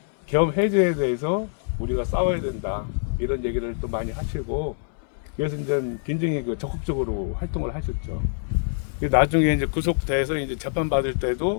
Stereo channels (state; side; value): silent; right; digital silence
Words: 계엄 해제에 대해서 우리가 싸워야 된다 이런 얘기를 또 많이 하시고 그래서 이제 굉장히 적극적으로 활동을 하셨죠. 나중에 이제 구속돼서 이제 재판 받을